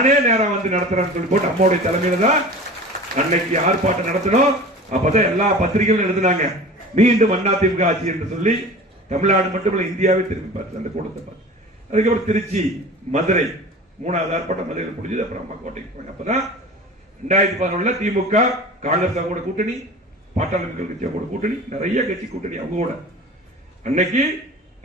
நேரம் நடத்துறேன்னு சொல்லி போட்டு அம்மாவுடைய தலைமையில தான் அன்னைக்கு ஆர்ப்பாட்டம் நடத்தணும். அப்பதான் எல்லா பத்திரிகைகளும் எழுதினாங்க, மீண்டும் அதிமுக ஆட்சி என்று சொல்லி. தமிழ்நாடு மட்டுமல்ல, இந்தியாவே திரும்பி பார்த்து அந்த கூட்டத்தை பார்த்து. அதுக்கப்புறம் திருச்சி, மதுரை 3வது ஆர்ப்பாட்டம் மதுரையில் முடிஞ்சது. அப்புறம் அம்மா கோட்டைக்கு போனாங்க. அப்பதான் 2011 திமுக காங்கிரஸ் கூட கூட்டணி, பாட்டாளி மக்கள் கட்சி கூட கூட்டணி, நிறைய கட்சி கூட்டணி அவங்க கூட. அன்னைக்கு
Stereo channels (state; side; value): normal; both; correlation 0.38